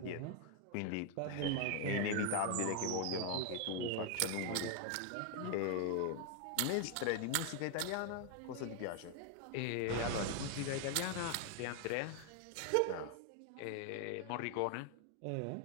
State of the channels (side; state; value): both; different; correlation 0.00